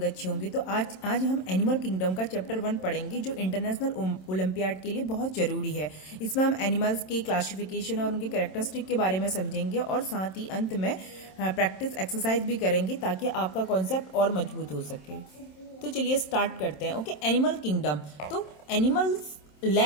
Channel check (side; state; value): right; late; 27 ms